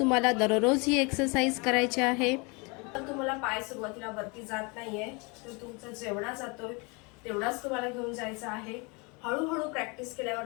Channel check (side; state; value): right; quieter; 30.1 dB